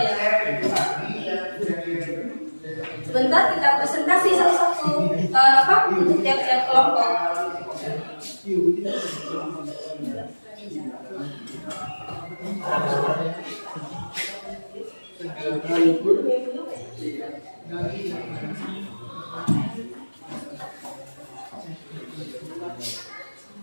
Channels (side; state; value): both; inverted; correlation -1.00